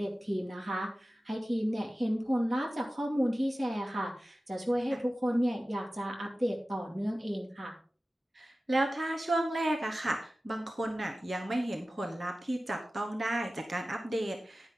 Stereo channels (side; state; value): both; normal; correlation 0.96